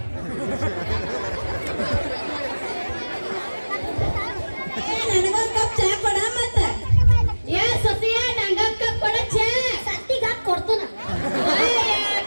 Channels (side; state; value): both; inverted; correlation -1.00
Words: ನನಗೊಂದ್ ಕಪ್ ಚಾ ಕೊಡ ಮತ್ತ ಏ ಸತಿಯ ನಂಗೊಂದ್ ಕಪ್ ಕೊಡ ಚಾ ಸತ್ತಿಗ ಕೊಡ್ತಾನ